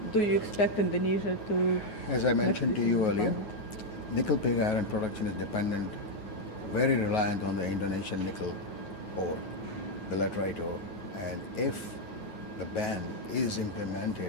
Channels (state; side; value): late; right; 9.3 ms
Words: Do you expect Indonesia to... As I mentioned to you earlier, nickel pig iron production is dependent, very reliant on the Indonesian nickel ore, the laterite ore. And if the ban is